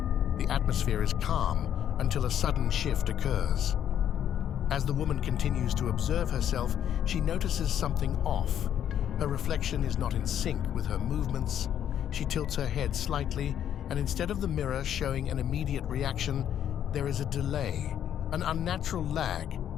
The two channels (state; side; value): quieter; right; 10.0 dB